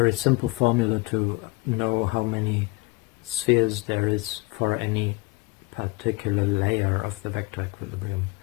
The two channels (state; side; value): quieter; right; 23.4 dB